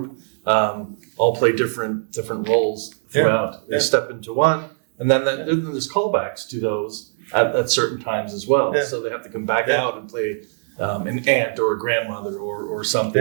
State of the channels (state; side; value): silent; left; digital silence